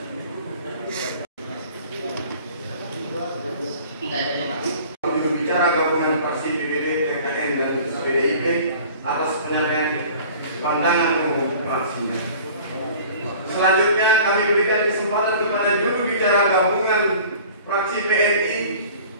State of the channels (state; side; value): inverted; both; correlation -0.46